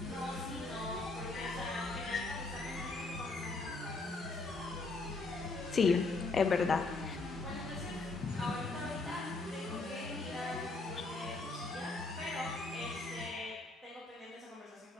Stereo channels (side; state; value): right; quieter; 3.5 dB